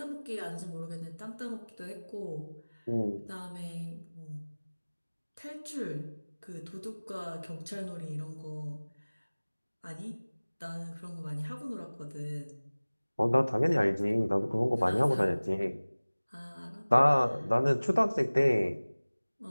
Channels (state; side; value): inverted; both; correlation -1.00